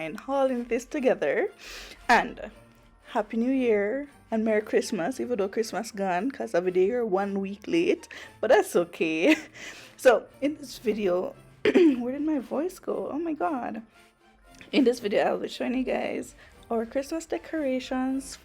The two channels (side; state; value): both; identical; correlation 1.00